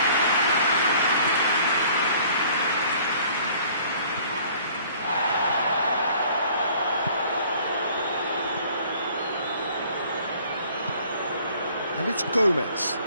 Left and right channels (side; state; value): both; inverted; correlation -0.54